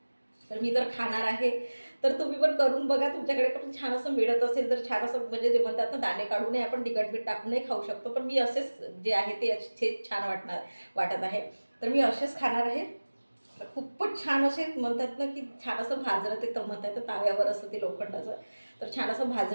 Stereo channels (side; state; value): both; inverted; correlation -1.00